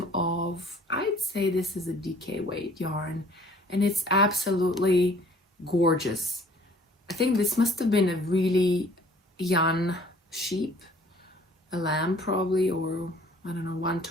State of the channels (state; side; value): normal; both; correlation 0.54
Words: of, I'd say this is a DK weight yarn, and it's absolutely gorgeous. I think this must have been a really young sheep, a lamb probably, or I don't know,